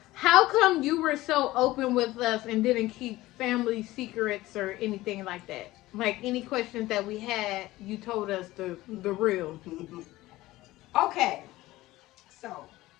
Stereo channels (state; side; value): quieter; right; 17.6 dB